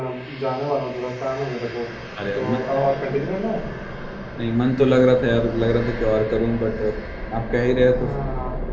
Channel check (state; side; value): identical; both; correlation 1.00